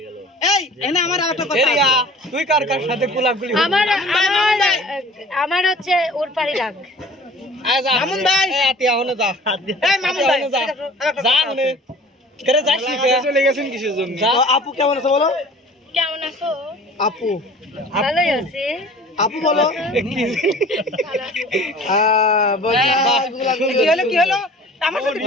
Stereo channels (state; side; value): normal; both; correlation 0.46